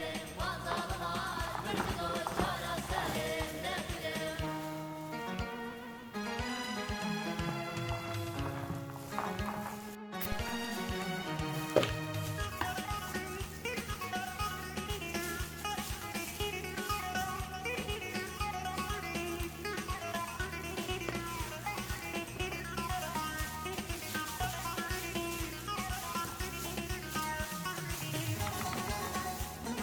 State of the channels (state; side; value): identical; both; correlation 1.00